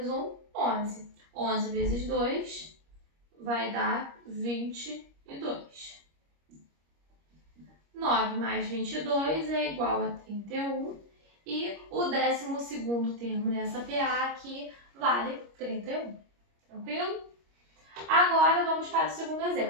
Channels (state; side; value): late; left; 25 ms